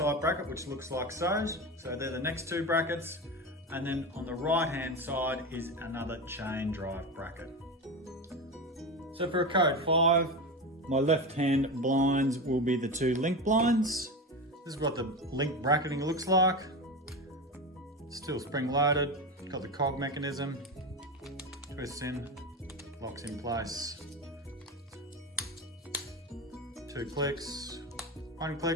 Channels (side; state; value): both; normal; correlation 0.21